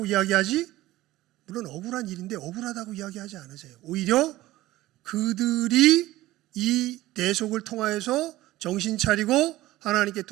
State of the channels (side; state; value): left; quieter; 16.6 dB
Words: 이야기하지, 물론 억울한 일인데 억울하다고 이야기하지 않으세요. 오히려 그들이 이 대속을 통하여서 정신 차리고 하나님께